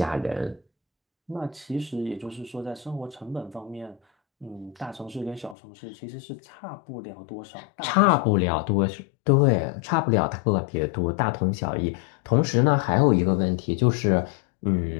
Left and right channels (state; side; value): drops out; right; at 5.6 s